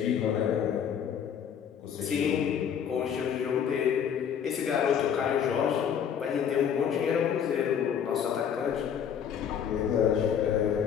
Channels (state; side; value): quieter; right; 8.2 dB